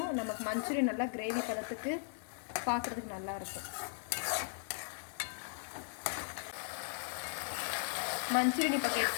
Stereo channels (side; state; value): right; silent; digital silence